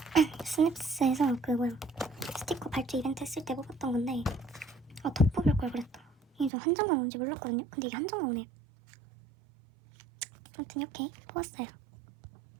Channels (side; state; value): left; drops out; at 6.5 s